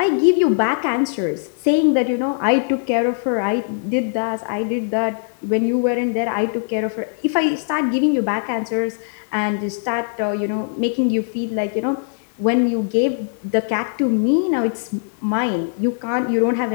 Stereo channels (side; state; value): right; silent; digital silence